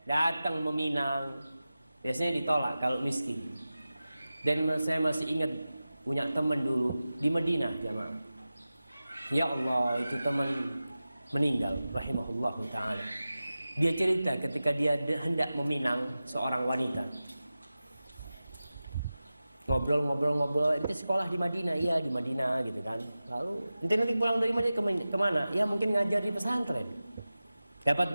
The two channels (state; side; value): inverted; both; correlation -0.95